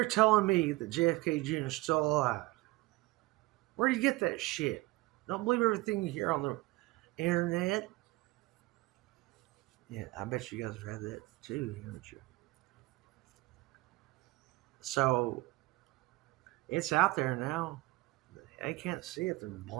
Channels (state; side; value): quieter; left; 21.0 dB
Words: telling me that JFK Jr. is still alive. Where do you get that shit? Don't believe everything you hear on the internet. Yeah, I bet you guys have had that too, haven't you? So it's out there now. They can't see it. They're